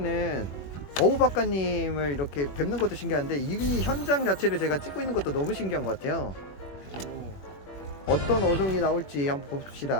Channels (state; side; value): late; right; 21 ms